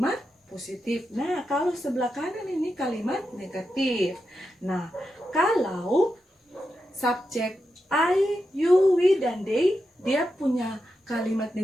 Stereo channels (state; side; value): normal; both; correlation 0.87